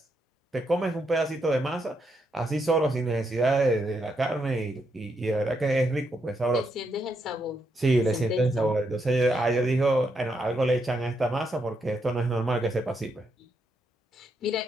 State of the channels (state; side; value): normal; both; correlation 0.79